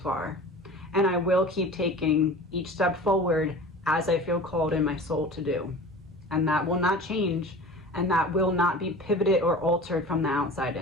And I will keep taking each step forward as I feel called in my soul to do. And that will not change, and that will not be pivoted or altered from the outside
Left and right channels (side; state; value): both; normal; correlation 0.38